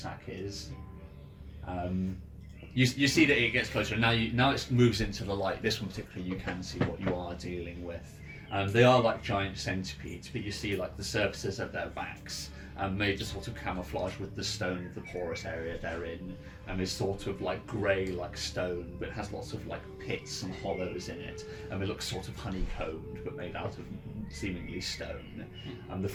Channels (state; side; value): identical; both; correlation 1.00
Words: is. You see that it gets closer. Now it moves into the light. This one particularly, you can see what you are dealing with. They are like giant centipedes, but you see like the surfaces of their backs made to sort of camouflage with the stone of the porous area they're in, and is sort of like grey like stone, but it has lots of like pits and hollows in it, and it looks sort of honeycombed, but made out of seemingly stone. The